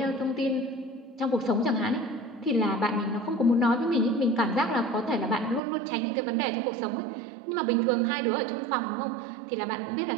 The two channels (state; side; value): drops out; left; at 5.6 s